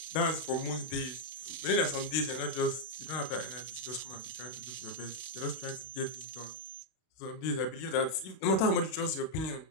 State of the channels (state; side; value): late; right; 31 ms